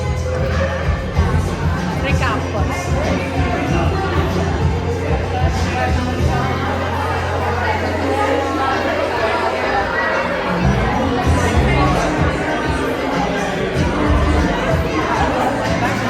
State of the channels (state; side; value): identical; both; correlation 1.00